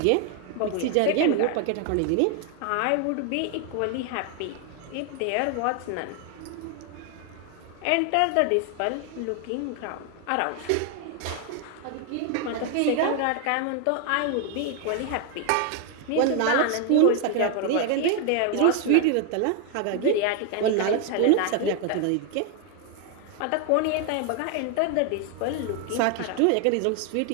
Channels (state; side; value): different; both; correlation 0.01